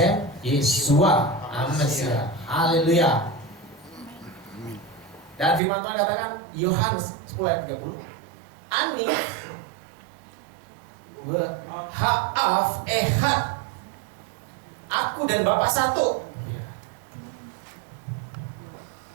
Yeshua Amasiah. Haleluya. Dan firman Tuhan katakan Yohanes 10 ayat 30, Ani ha'af ehad, aku dan Bapa satu.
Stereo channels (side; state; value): left; drops out; at 5.6 s